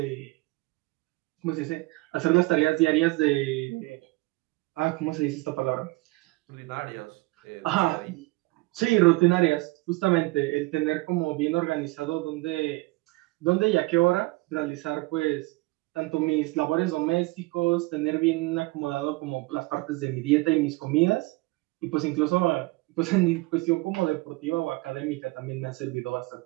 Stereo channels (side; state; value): left; quieter; 22.5 dB